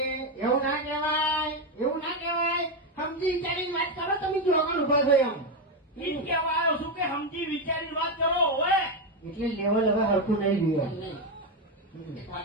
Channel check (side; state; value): both; normal; correlation 0.08